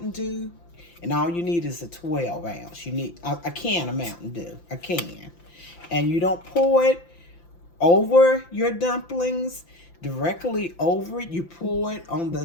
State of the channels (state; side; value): late; right; 5.9 ms